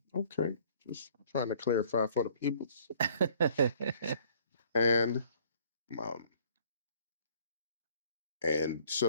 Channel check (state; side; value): inverted; both; correlation -0.57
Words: Okay, just trying to clarify for the people. And and